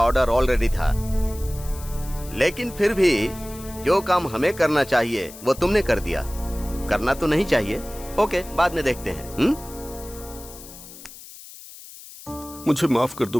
ऑर्डर ऑलरेडी था, लेकिन फिर भी जो काम हमें करना चाहिए वो तुमने कर दिया। करना तो नहीं चाहिए। ओके, बाद में देखते हैं। मुझे माफ कर दो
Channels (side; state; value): left; noise; hiss, 17 dB below the sound